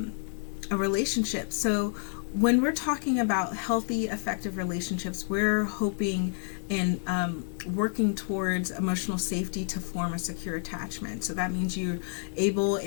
relationship? So when we're talking about healthy, effective relationships, we're hoping and working towards emotional safety to form a secure attachment. So that means you're able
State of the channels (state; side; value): silent; right; digital silence